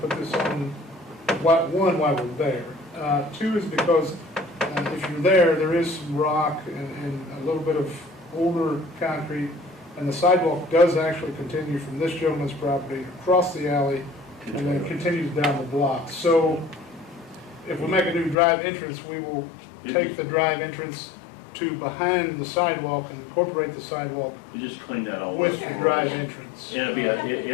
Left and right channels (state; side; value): drops out; right; at 18.4 s